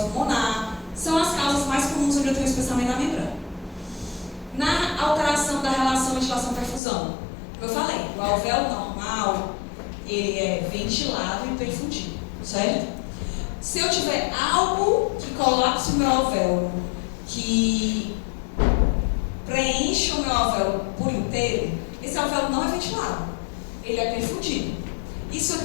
pulmonar. São as causas mais comuns onde eu tenho especialmente na membrana. Na alteração da relação ventilação-perfusão, como eu falei, o alvéolo normal, ele é ventilado e perfundido, certo? Se eu tiver algo que colapse o meu alvéolo, que preenche o meu alvéolo por inteiro, esse alvéolo não é ventilado, ele é perfundido. Isso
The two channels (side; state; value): right; drops out; at 6.8 s